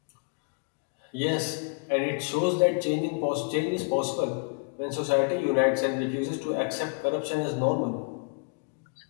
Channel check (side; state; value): right; quieter; 35.1 dB